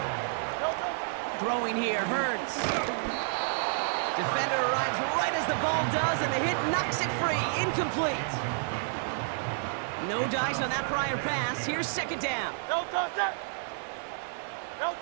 Throwing here, Hurts. Defender arrives right as the ball does, and the hit knocks it free. Incomplete. No dice on that prior pass. Here's 2nd down. No touch. No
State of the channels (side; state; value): left; silent; digital silence